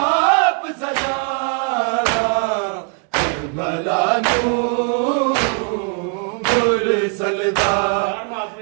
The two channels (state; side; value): quieter; left; 40.0 dB